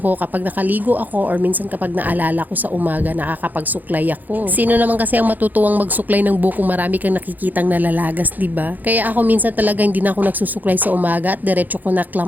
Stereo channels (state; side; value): late; left; 0.084 ms